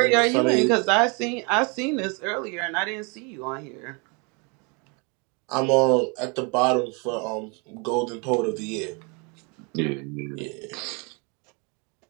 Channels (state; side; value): quieter; left; 32.9 dB